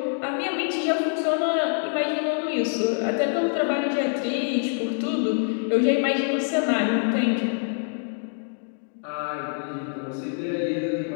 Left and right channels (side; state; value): right; silent; digital silence